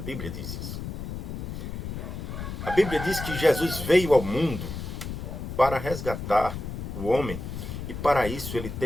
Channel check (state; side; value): noise; left; rumble, 6 dB below the sound